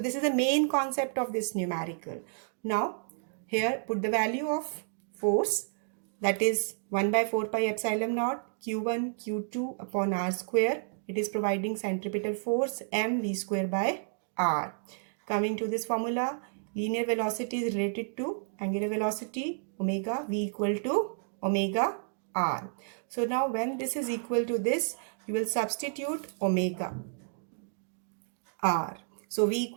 this is the main concept of this numerical. Now here put the value of force, that is 1 by 4 pi epsilon naught q1 q2 upon r square. It is providing centripetal force mv square by r. Coming to this formula, linear velocity is related to angular velocity omega v equal to omega r. So now when this is equal to this, you will substitute omega r. So v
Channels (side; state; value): left; silent; digital silence